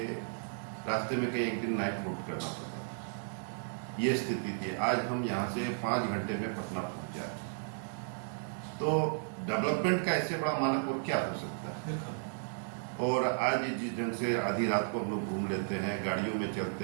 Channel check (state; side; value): silent; left; digital silence